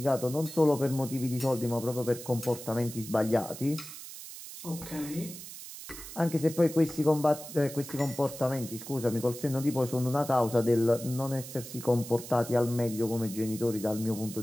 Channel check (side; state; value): right; noise; hiss, 12 dB below the sound